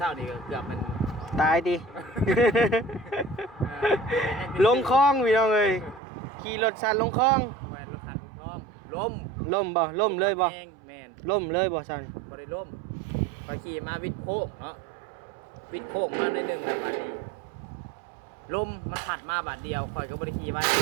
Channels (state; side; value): drops out; left; at 6.0 s